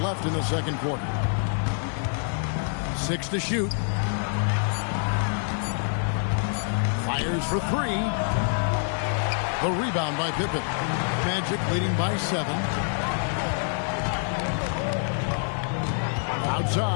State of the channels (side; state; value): right; silent; 61 dB below the other